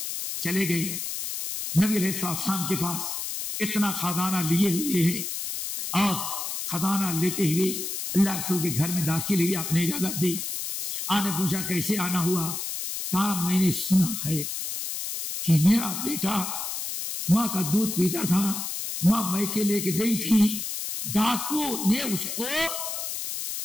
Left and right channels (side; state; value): left; noise; hiss, 4 dB below the sound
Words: چلے گئے نبی علیہ السلام کے پاس، اتنا خزانہ لیے ہوئے ہیں اور خزانہ لیتے ہوئے اللہ رسول کے گھر میں داخل ہوئی. آپ نے اجازت دی. آنے پوچھا کیسے آنا ہوا؟ کہا میں نے سنا ہے کہ میرا بیٹا ماں کا دودھ پیتا تھا، ماں میکے لے کے گئی تھی، ڈاکو نے اس کو